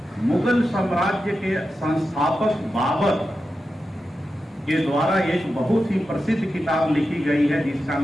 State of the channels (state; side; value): normal; both; correlation 0.90